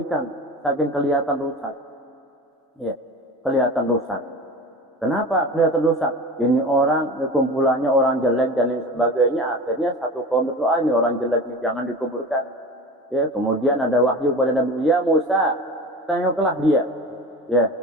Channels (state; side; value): normal; both; correlation 0.33